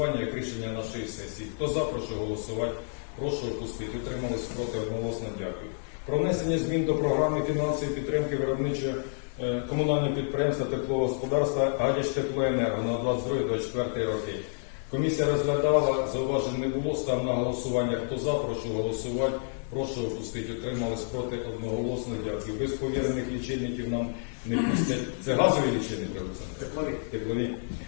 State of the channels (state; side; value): silent; right; 55 dB below the other